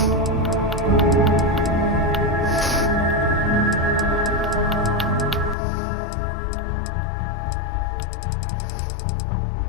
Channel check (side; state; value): right; drops out; at 5.6 s